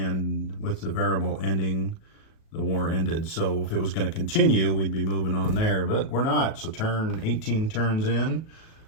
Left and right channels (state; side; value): late; right; 37 ms